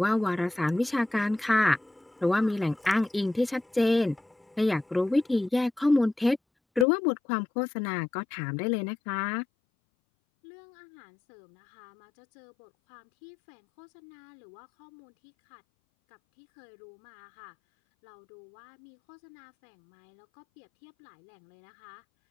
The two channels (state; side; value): drops out; right; at 6.9 s